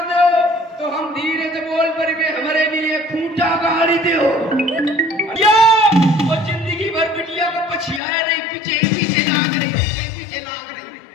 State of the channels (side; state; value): right; drops out; at 8.0 s